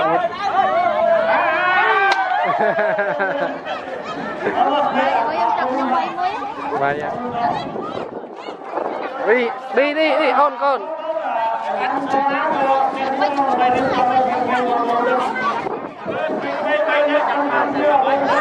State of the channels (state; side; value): identical; both; correlation 1.00